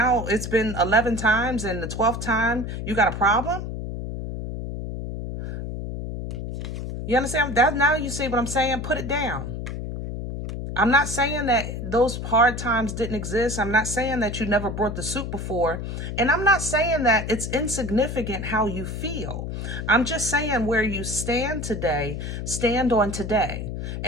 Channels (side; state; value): left; noise; hum, 5 dB below the sound